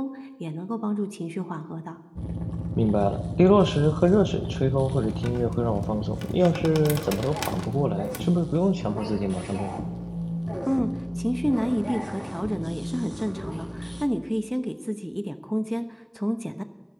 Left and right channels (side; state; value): both; identical; correlation 1.00